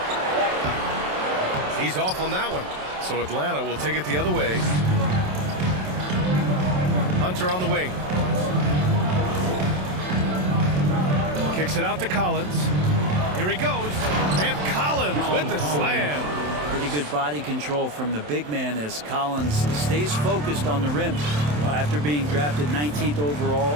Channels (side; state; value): left; late; 27 ms